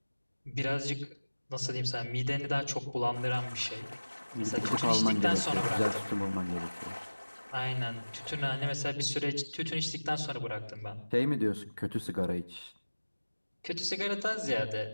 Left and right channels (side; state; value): both; inverted; correlation -1.00